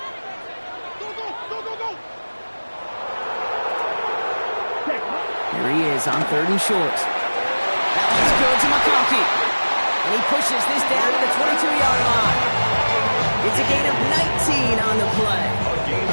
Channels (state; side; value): inverted; both; correlation -1.00